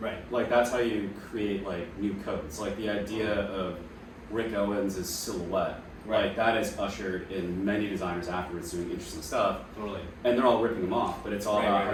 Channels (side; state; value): both; identical; correlation 1.00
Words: Right. Like that's how you create like new codes. Like the idea of Rick Owens' silhouette. Right. Like that is ushered in many designers afterwards doing interesting stuff. Totally. And they're all ripping them off, but it's all Right, about